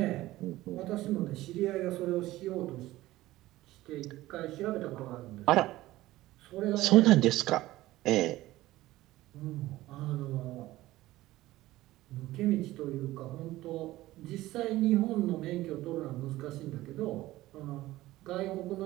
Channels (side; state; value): left; quieter; 16.8 dB